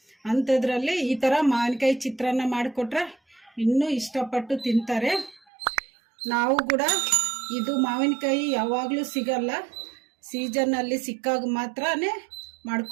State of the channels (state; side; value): drops out; left; at 5.4 s